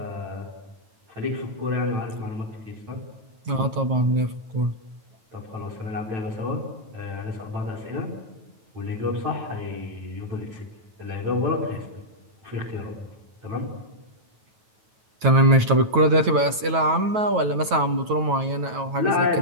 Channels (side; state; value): left; late; 9.2 ms